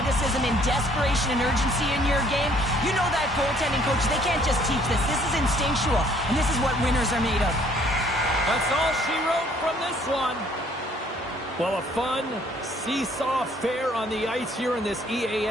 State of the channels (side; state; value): both; normal; correlation 0.61